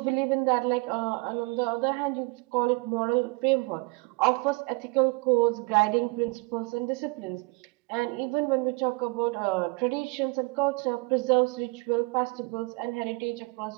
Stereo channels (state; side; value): quieter; left; 28.1 dB